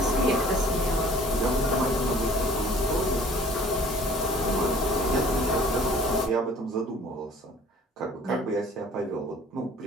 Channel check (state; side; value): normal; both; correlation 0.52